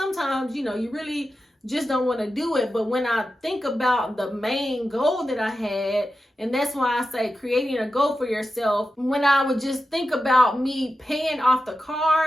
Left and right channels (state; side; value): normal; both; correlation 0.91